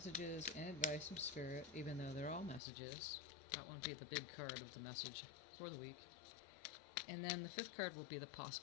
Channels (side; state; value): right; drops out; at 2.6 s